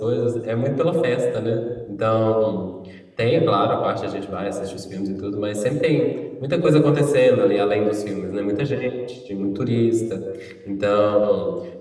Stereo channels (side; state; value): both; identical; correlation 1.00